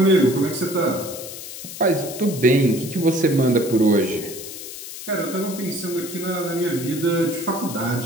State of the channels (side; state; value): left; noise; hiss, 11 dB below the sound